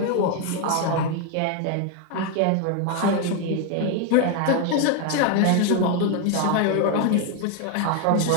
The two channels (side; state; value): both; different; correlation 0.01